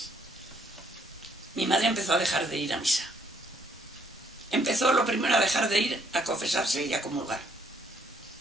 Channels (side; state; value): both; normal; correlation 0.69